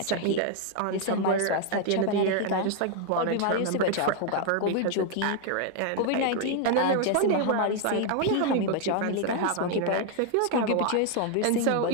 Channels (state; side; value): different; both; correlation 0.00